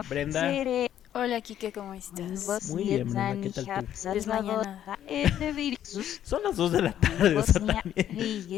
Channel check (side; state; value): right; quieter; 10.8 dB